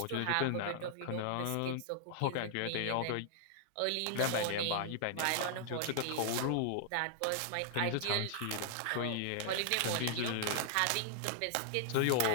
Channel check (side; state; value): both; different; correlation -0.01